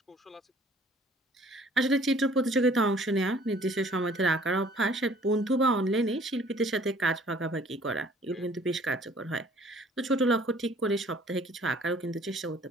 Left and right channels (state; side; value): normal; both; correlation 0.55